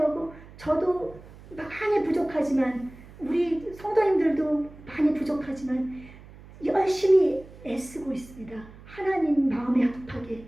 저도 많이 부족하지만 우리 성도님들도 많이 부족하지만 열심히 애쓰고 있습니다. 하나님 마음에 합하게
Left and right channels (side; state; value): right; noise; hum, 20 dB below the sound